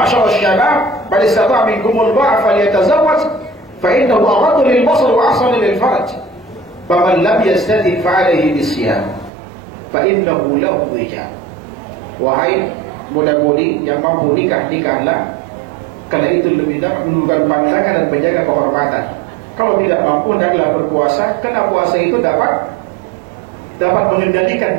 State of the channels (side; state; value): left; drops out; at 9.3 s